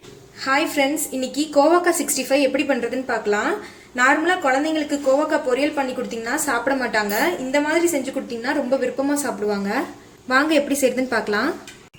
Hi friends, இன்னைக்கு கோவக்காய் 65 எப்படி பண்ணுறதுன்னு பார்க்கலாம். நார்மலாக குழந்தைங்களுக்கு கோவக்காய் பொரியல் பண்ணி கொடுத்தீங்கன்னா சாப்பிட மாட்டாங்க. இந்த மாதிரி செஞ்சு கொடுத்தீங்கன்னா ரொம்ப விருப்பமாக சாப்பிடுவாங்க. வாங்க எப்படி செய்யுதுன்னு பார்க்கலாம்.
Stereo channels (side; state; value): both; identical; correlation 1.00